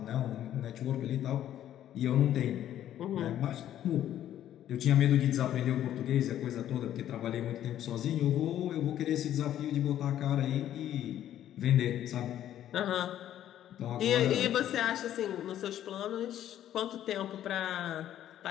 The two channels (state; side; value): quieter; right; 11.5 dB